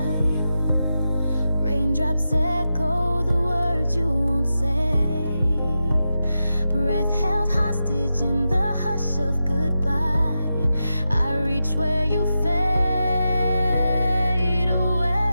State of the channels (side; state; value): both; inverted; correlation -0.90